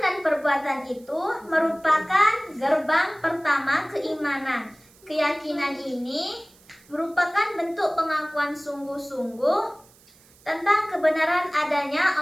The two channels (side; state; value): right; noise; hiss, 28 dB below the sound